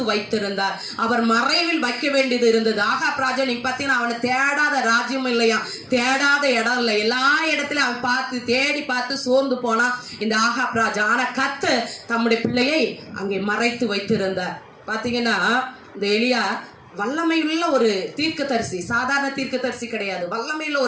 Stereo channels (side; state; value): both; identical; correlation 1.00